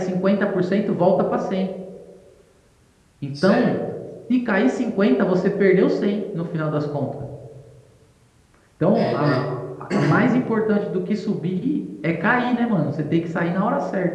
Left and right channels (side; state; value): both; identical; correlation 1.00